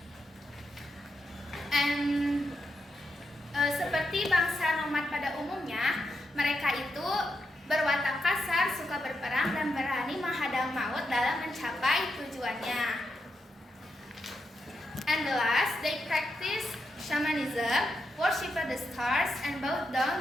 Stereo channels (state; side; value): normal; both; correlation 0.85